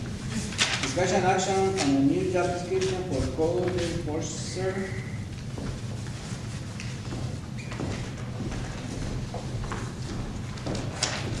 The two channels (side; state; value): both; identical; correlation 1.00